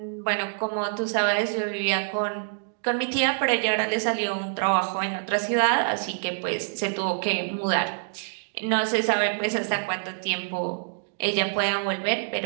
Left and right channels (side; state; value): left; silent; digital silence